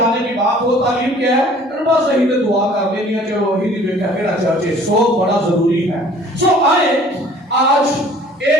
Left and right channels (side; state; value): both; normal; correlation 0.52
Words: کی بات ہو، تعلیم کیا ہے، بس صحیح سے دعا کر لینی ہے، چلو وہی نہیں بیٹھا میرا چرچ ہے، سو بڑا ضروری ہے۔ سو آئے آج